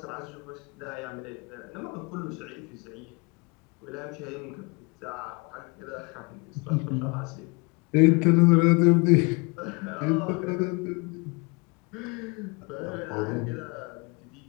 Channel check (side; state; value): right; quieter; 29.7 dB